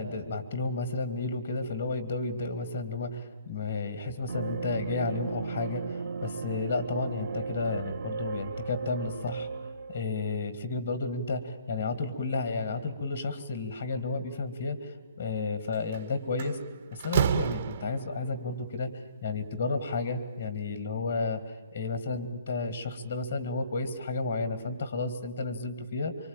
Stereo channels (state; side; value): inverted; both; correlation -0.56